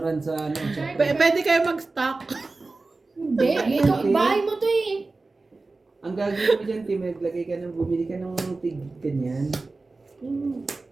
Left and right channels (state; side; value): quieter; left; 3.5 dB